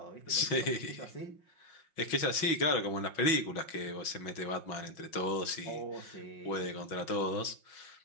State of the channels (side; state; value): right; late; 5.6 ms